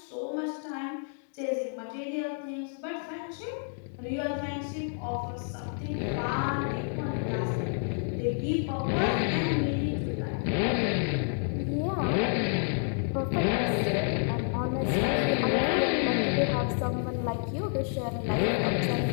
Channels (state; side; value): silent; right; 58 dB below the other